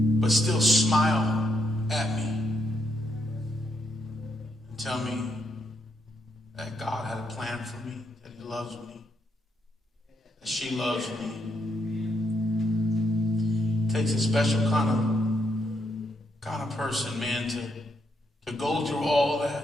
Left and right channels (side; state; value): both; normal; correlation 0.78